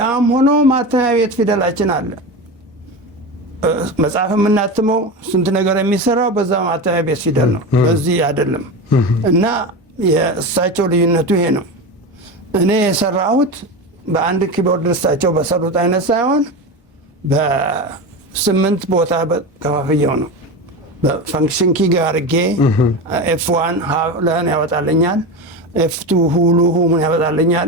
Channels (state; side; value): normal; both; correlation 0.23